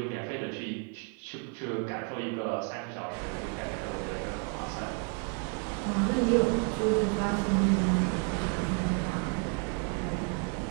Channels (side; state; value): left; quieter; 39.9 dB